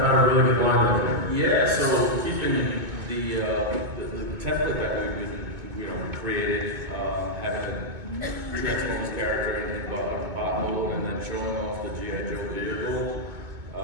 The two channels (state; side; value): late; left; 2.2 ms